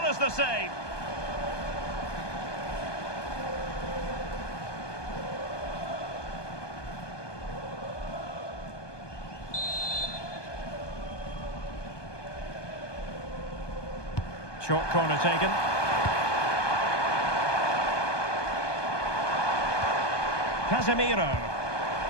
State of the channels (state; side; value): late; right; 1.2 ms